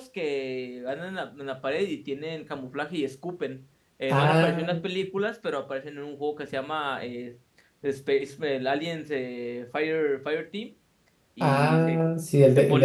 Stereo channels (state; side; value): identical; both; correlation 1.00